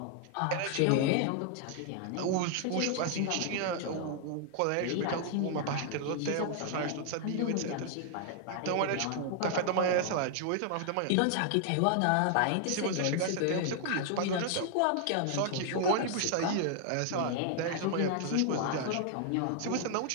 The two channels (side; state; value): both; different; correlation 0.00